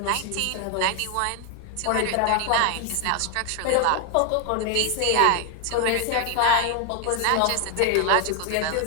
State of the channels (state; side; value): different; both; correlation 0.01